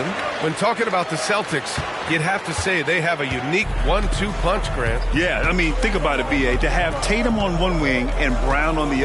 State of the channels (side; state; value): both; identical; correlation 1.00